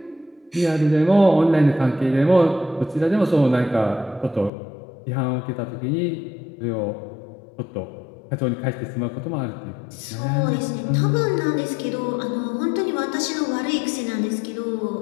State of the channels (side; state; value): right; drops out; at 4.5 s